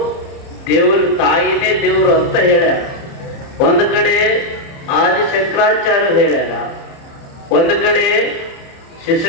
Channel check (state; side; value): late; right; 30 ms